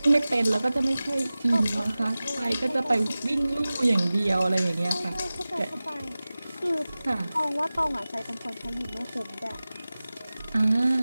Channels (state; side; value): inverted; both; correlation -0.97